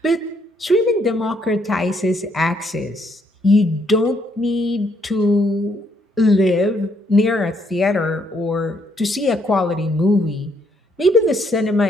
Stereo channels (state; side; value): normal; both; correlation 0.71